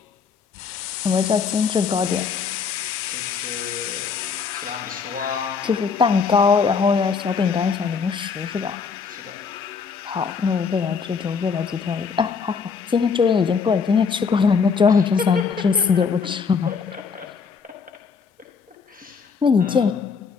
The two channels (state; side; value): quieter; right; 5.7 dB